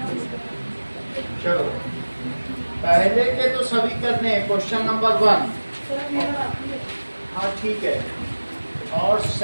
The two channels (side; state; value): both; inverted; correlation -1.00